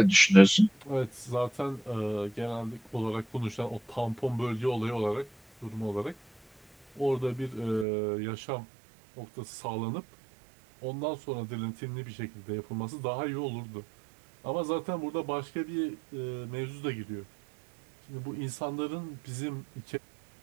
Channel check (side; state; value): left; drops out; at 7.9 s